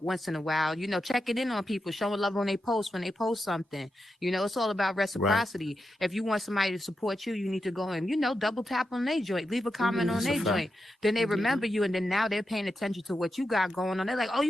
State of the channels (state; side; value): normal; both; correlation 0.88